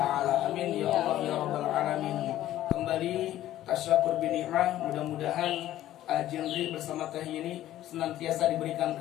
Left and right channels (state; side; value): quieter; right; 13.5 dB